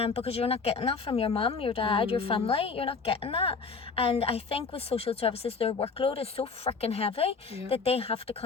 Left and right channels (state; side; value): quieter; right; 4.9 dB